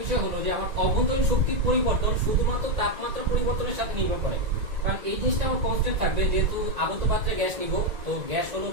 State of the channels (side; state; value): left; late; 2.0 ms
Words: বিষয় হলো যে আমার অভ্যন্তরীণ শক্তির পরিবর্তন শুধুমাত্র তাপমাত্রা পরিবর্তনের সাথে নির্ভর করে, কারণ এই জিনিসটা আমার কনস্ট্যান্ট থাকবে। যেহেতু আবদ্ধ পাত্রে গ্যাস নিব, তো গ্যাস হলো